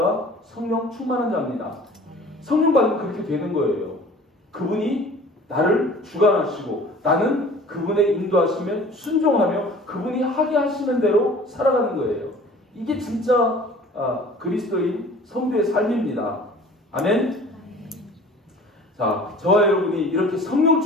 성령 충만한 자입니다. 성령 받으면 그렇게 되는 거예요. 그분이 나를 주관하시고 나는 그분의 인도하시면 순종하며 그분이 하게 하시는 대로 살아가는 거예요. 이게 진짜 그리스도인 성도의 삶입니다. 아멘. 자, 저와 여러분이 이렇게 성령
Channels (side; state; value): both; normal; correlation 0.46